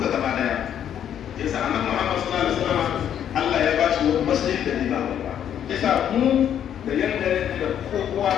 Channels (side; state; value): right; quieter; 9.7 dB